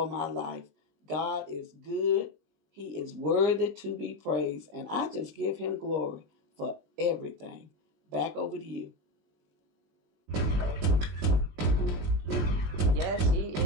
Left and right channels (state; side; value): late; left; 20 ms